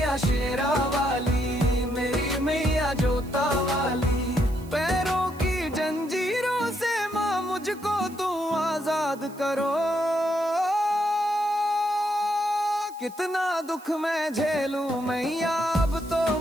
शेरा वाली, मेरी मैया जोता वाली। पैरों की जंजीरों से माँ मुझको तू आजाद करो। कितना दुख मैं झेलूं मैया, अब तो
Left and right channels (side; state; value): right; noise; hiss, 23 dB below the sound